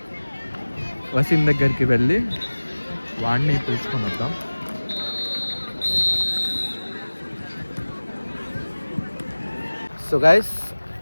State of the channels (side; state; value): both; inverted; correlation -1.00